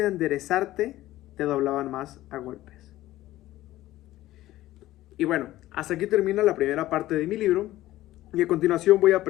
enderezarte, te doblaban más a golpes. Y bueno, hasta aquí termina la primera parte de mi libro, y a continuación voy a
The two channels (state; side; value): quieter; right; 15.5 dB